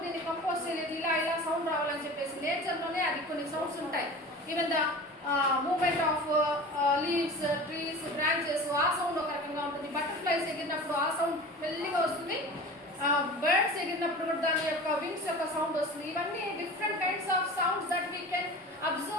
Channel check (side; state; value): both; normal; correlation 0.36